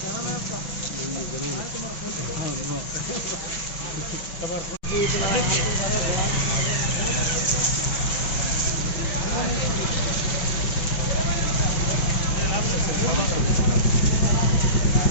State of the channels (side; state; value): right; late; 5.7 ms